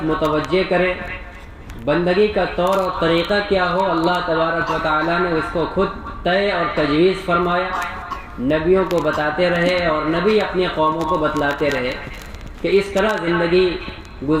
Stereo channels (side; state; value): both; identical; correlation 1.00